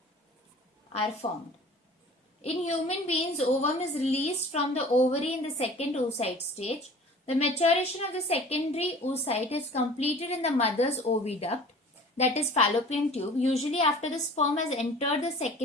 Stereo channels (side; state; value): both; normal; correlation 0.45